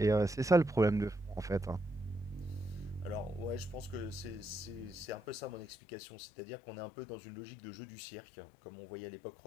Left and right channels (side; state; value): right; drops out; at 5.7 s